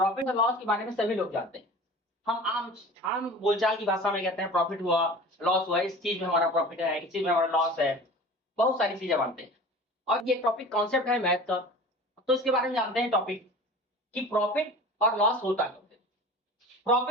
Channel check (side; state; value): both; normal; correlation 0.39